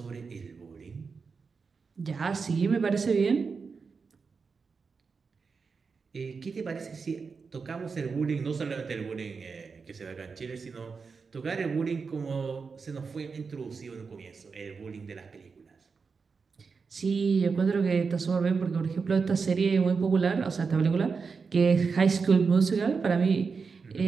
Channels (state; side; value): quieter; left; 5.1 dB